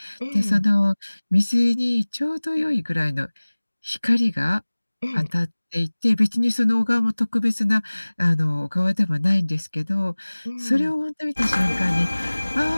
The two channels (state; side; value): inverted; both; correlation -1.00